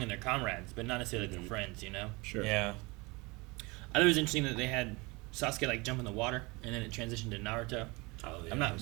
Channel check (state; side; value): quieter; left; 25.6 dB